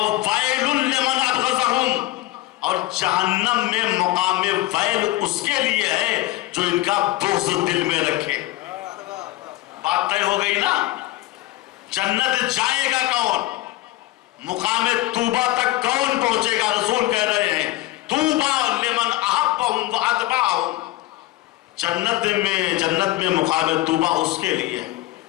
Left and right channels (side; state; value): right; quieter; 17.4 dB